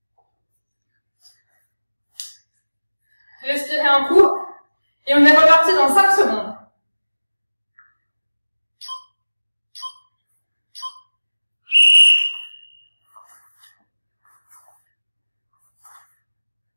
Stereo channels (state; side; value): inverted; both; correlation -1.00